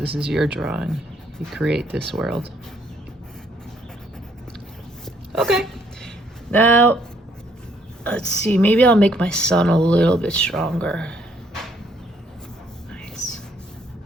is your drawing. You create this world. Okay, now, let's see, maybe I'll make my sun a little bit stronger.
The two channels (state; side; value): normal; both; correlation 0.67